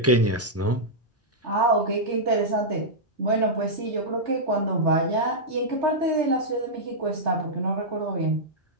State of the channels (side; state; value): both; normal; correlation -0.07